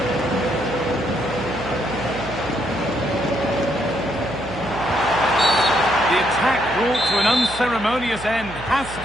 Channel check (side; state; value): right; noise; hum, 14 dB below the sound